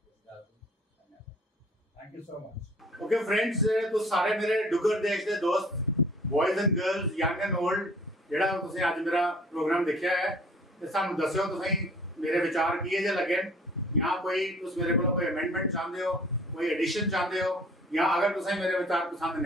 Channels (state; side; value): normal; both; correlation 0.52